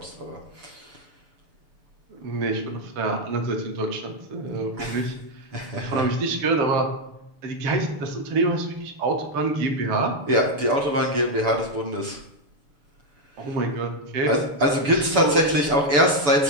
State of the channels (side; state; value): left; late; 7.0 ms